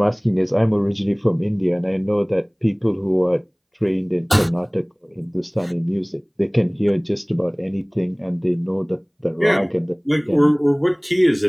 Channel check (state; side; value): identical; both; correlation 1.00